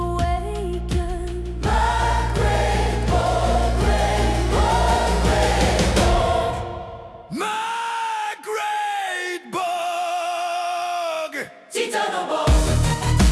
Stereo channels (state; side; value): identical; both; correlation 1.00